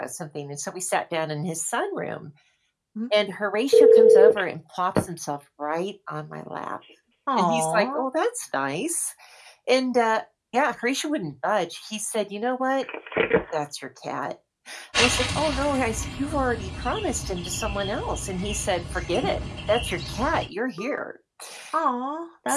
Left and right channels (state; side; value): identical; both; correlation 1.00